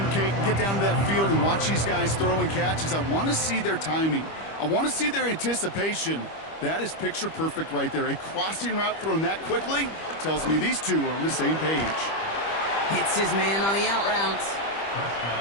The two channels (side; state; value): right; late; 25 ms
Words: Kate, and get down to that field and watch these guys throw and catch is I want to see their timing. I want to see their anticipation. That is picture perfect right there. A crossing route thrown that quickly tells me these two are on the same page. Hits his man on the out route.